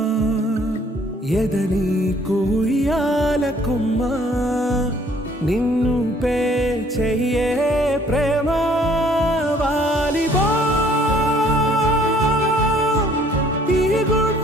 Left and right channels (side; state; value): both; normal; correlation 0.60